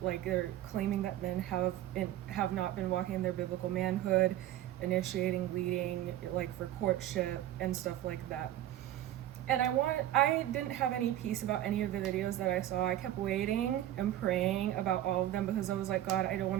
they're claiming that men have not been walking in their biblical manhood, initiating, leading, for courtship and stuff like that. And I didn't have any peace about any of the videos that I saw. I kept waiting and praying about all of them because I was like, God, I don't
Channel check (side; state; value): left; quieter; 13.1 dB